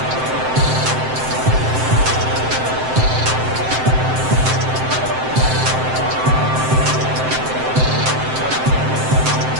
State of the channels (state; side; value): late; left; 7.7 ms